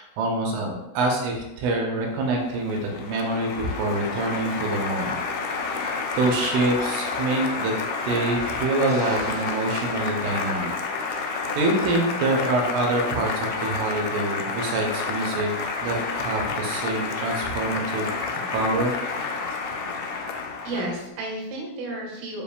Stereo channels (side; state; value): left; late; 16 ms